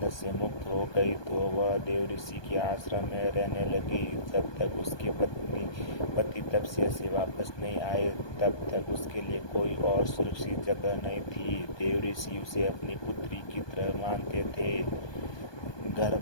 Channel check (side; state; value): right; late; 1.2 ms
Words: से मुक्त हो गई तो वह देव ऋषि के आश्रम में रहने लगी। जब तक उसके पति तपस्या से वापस नहीं आए, तब तक उसके लिए कोई और सुरक्षित जगह नहीं थी। देव ऋषि उसे अपनी पुत्री की तरह मानते थे।